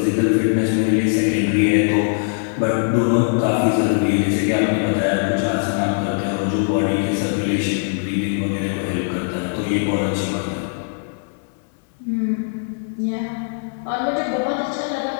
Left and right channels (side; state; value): right; silent; digital silence